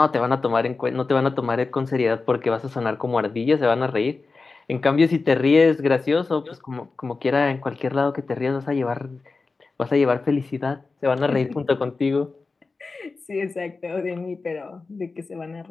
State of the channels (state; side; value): quieter; right; 4.0 dB